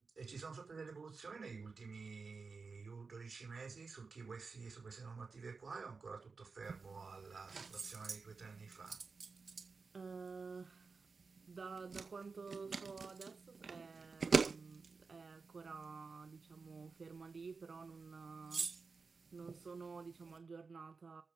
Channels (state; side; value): quieter; left; 4.6 dB